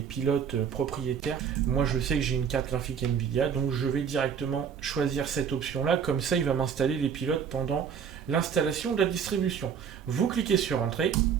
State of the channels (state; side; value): quieter; left; 7.3 dB